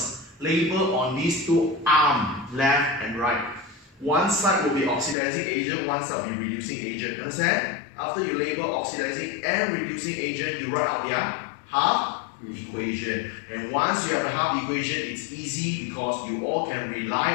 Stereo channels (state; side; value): drops out; right; at 5.2 s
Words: Label on these two arms, left and right. One side will be oxidizing agent, one side will be reducing agent. Understand? After you label oxidizing and reducing agent, you write out their half equation. And once you have a half equation, it's easy because you all can rely